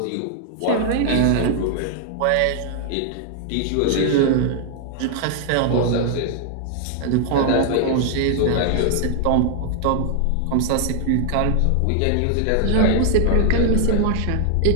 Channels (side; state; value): both; different; correlation 0.00